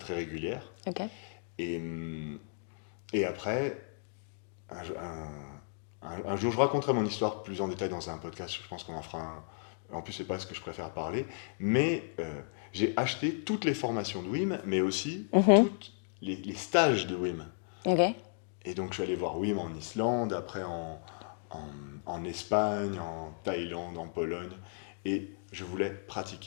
régulière. Ok. Et après, un jour, je raconterai mon histoire plus en détail dans un podcast. Je pense qu'on en fera un. En plus, c'est pas ce que je préfère parler. Mais j'ai acheté toutes les formations de Wim, mais aussi tous les stages de Wim. Ok. Et donc, je suis allé voir Wim en Islande, après en Espagne, en Thaïlande, en Pologne. Et je voulais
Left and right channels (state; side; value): silent; right; digital silence